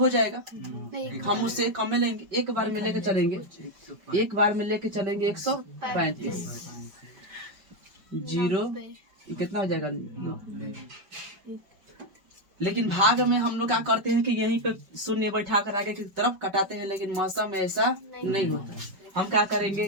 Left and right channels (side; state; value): left; late; 5.1 ms